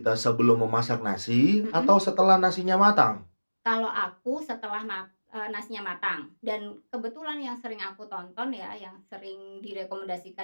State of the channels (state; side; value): inverted; both; correlation -1.00